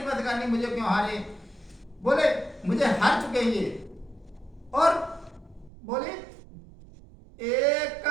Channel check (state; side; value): drops out; left; at 5.7 s